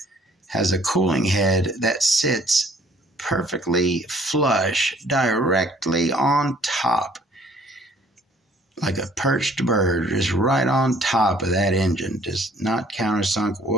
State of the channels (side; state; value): both; normal; correlation 0.58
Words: has a cooling head that sits perfectly flush directly on top, like a perched bird, just right on top of that engine, just not countersunk